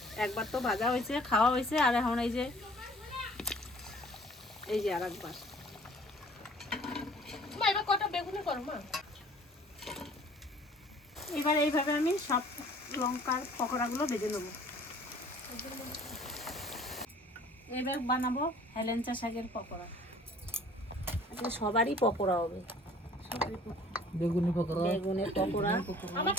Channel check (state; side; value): normal; both; correlation 0.52